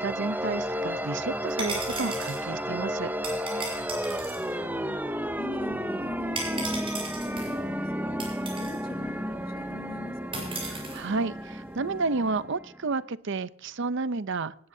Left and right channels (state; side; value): normal; both; correlation 0.46